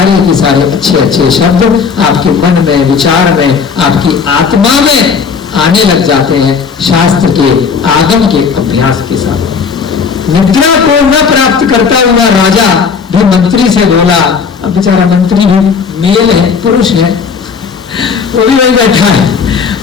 के सारे अच्छे अच्छे शब्द आपके मन में, विचार में, आपकी आत्मा में आने लग जाते हैं शास्त्र के आगम के अभ्यास के साथ। निद्रा को न प्राप्त करता हुआ राजा भी मंत्री से बोला। अब बेचारा मंत्री भी मेल है, पुरुष है, वो भी वही बैठा है।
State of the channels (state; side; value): quieter; right; 5.8 dB